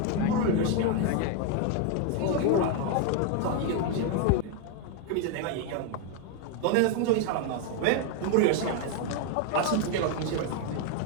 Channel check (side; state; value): both; different; correlation 0.01